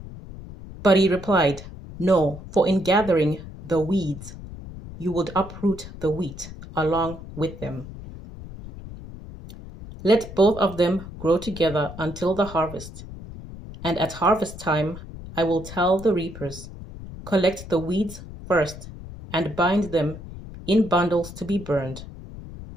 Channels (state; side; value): noise; left; rumble, 13 dB below the sound